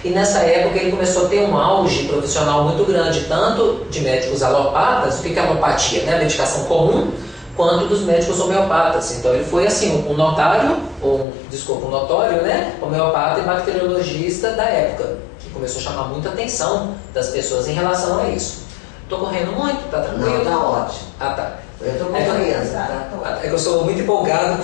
E nessa época ele começou a ter um auge profissional muito grande, tanto de médicos alopatas, o que é alopatia, né? A medicação comum, quanto dos médicos homeopatas. Então ele foi assim, um notório, um notório, né? Homeopata e bacteriologista da época, que começou a chamar muita atenção das pessoas em relação a isso. Estou correndo muito? Tá tranquilo? Não, tá ótimo. Ah, tá. Eu estou compreendendo, tá? É que eu sou muito empolgado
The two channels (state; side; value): drops out; right; at 11.2 s